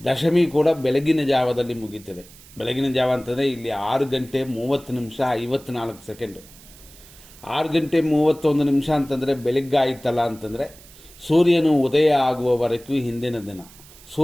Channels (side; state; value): right; noise; hiss, 22 dB below the sound